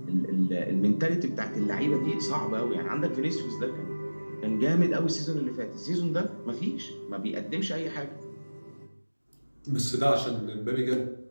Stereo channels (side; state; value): both; inverted; correlation -1.00